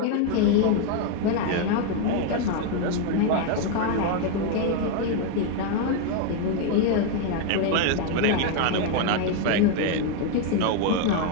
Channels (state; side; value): different; both; correlation 0.01